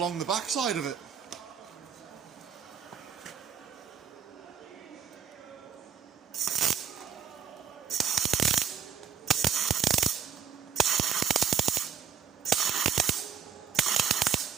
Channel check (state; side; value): quieter; left; 7.7 dB